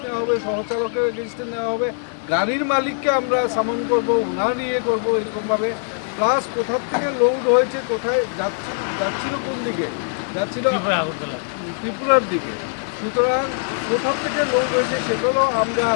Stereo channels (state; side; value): silent; right; digital silence